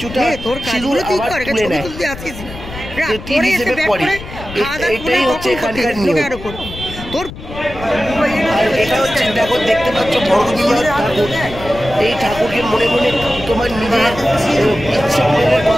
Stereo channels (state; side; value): noise; left; rumble, 13 dB below the sound